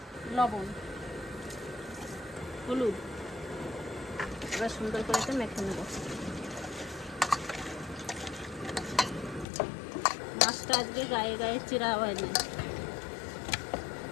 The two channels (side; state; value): right; drops out; at 9.5 s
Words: লবণ, হলুদ, এবার সুন্দর করে একটা মেখে নেবো। মাছটা আজকে গায়ে গায়ে চিরা হয়নি।